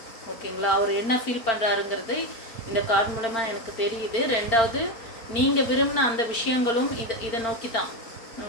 ஓகேங்களா? அவர் என்ன ஃபீல் பண்ணுறாருங்கிறது இந்த கார்டு மூலமாக எனக்கு தெரியுது. ரெண்டாவது, நீங்கள் விரும்பின அந்த விஷயங்களும் இதை நோக்கி தான்,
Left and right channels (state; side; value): late; right; 4.4 ms